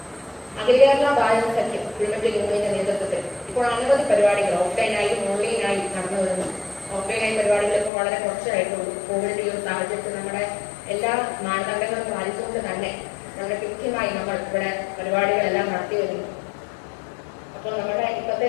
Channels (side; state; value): right; drops out; at 7.9 s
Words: അഖില കേരള ബാലൻ സഖ്യം കൊടുങ്ങല്ലൂർ യൂണിയന്റെ നേതൃത്വത്തിൽ ഇപ്പോൾ അനവധി പരിപാടികൾ ഓഫ്ലൈനായും ഓൺലൈനായും നടന്നു വരുന്നു. ഓഫ്ലൈനായി പരിപാടികൾ ഇപ്പോൾ വളരെ കുറച്ചായിട്ടുള്ളൂ. കോവിഡിന്റെ ഈ ഒരു സാഹചര്യത്തിൽ നമ്മുടെ എല്ലാ മാനദണ്ഡങ്ങളും പാലിച്ചുകൊണ്ട് തന്നെ വളരെ കൃത്യമായി നമ്മൾ ഇവിടെ പരിപാടികളെല്ലാം നടത്തി വരുന്നു. അപ്പോൾ നമ്മുടെ ഇന്നത്തെ